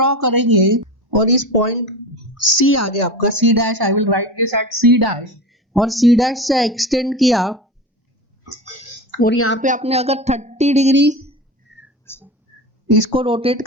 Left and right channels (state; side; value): normal; both; correlation 0.28